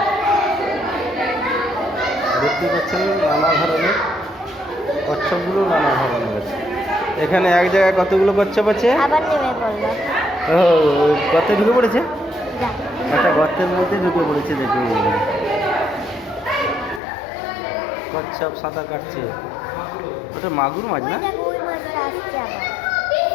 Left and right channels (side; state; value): right; drops out; at 17.0 s